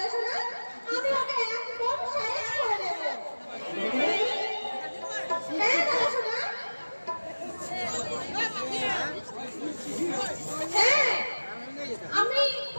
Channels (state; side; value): inverted; both; correlation -1.00